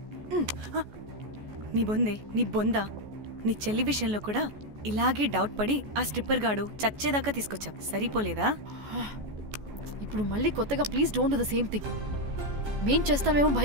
నీ బొందే, నీ బొందా, నీ చెల్లి విషయంలో కూడా ఇలాగే డౌట్ పడి ఆ స్ట్రిప్పర్ గాడు చచ్చేదాకా తీసుకొచ్చాం. సరిపోలేదా? ఇప్పుడు మళ్ళీ కొత్తగా please don't do the same thing. మేం చేస్తామేమో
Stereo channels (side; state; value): left; late; 14 ms